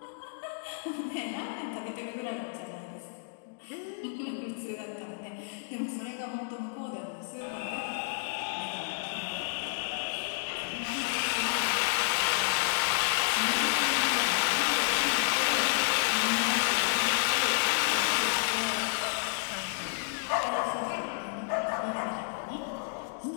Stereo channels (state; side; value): silent; right; digital silence